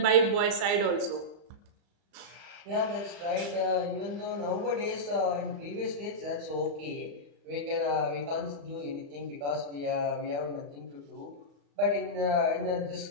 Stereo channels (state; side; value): late; left; 35 ms